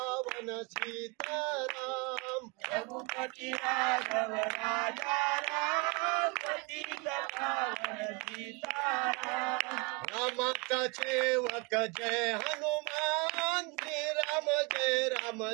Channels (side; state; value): left; quieter; 29.0 dB